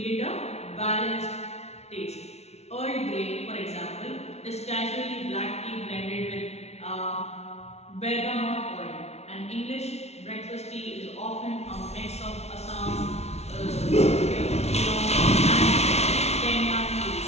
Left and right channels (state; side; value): late; right; 0.31 ms